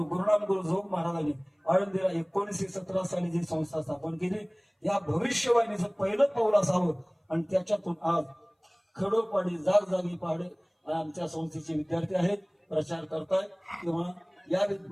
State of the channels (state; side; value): identical; both; correlation 1.00